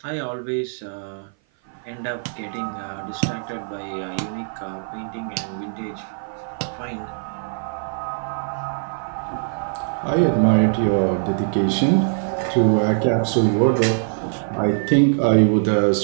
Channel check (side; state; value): left; silent; 56 dB below the other